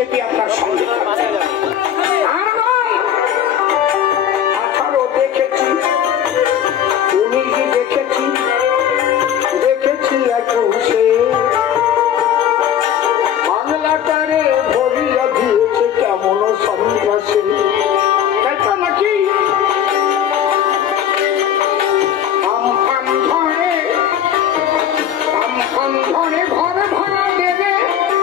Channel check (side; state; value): right; quieter; 9.7 dB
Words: আপনার সঙ্গে আর নয়। 18 দেখেছি, 19 দেখেছি, দেখেছি 21-এ বাংলাটারে ভরিয়া দিয়েছে কেমন সন্ত্রাসী। তাই তো নাকি? আমফান